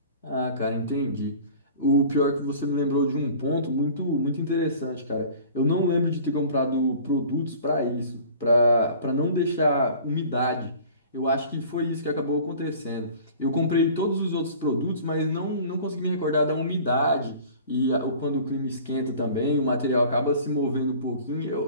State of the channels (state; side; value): inverted; both; correlation -0.45